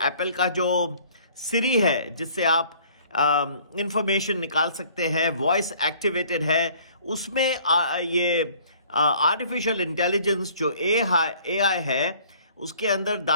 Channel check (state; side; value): inverted; both; correlation -0.55